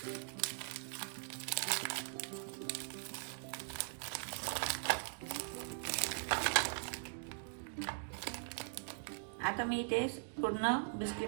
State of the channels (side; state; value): left; silent; digital silence